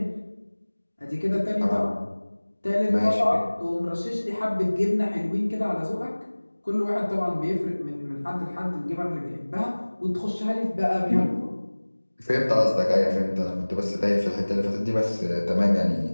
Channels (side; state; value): both; inverted; correlation -1.00